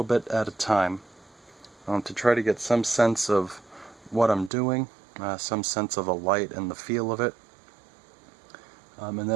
bit at a time, to try to get some sense of what I'm doing, some sense of the light and the feel of it, and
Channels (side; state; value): left; drops out; at 4.5 s